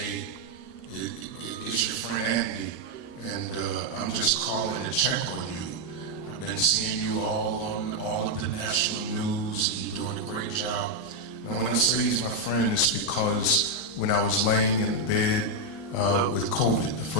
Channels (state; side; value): late; right; 13 ms